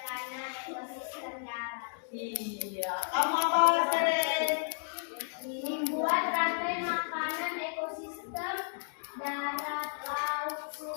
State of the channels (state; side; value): silent; right; digital silence